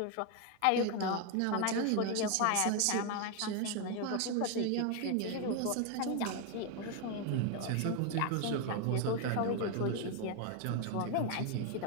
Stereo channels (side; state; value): both; different; correlation 0.01